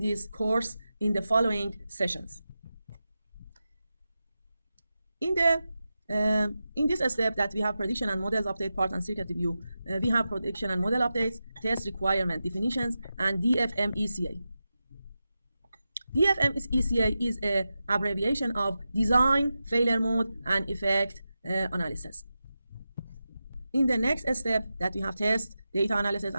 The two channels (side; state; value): both; inverted; correlation -0.91